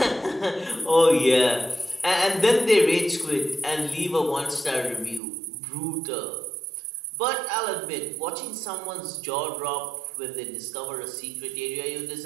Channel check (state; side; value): drops out; left; at 5.2 s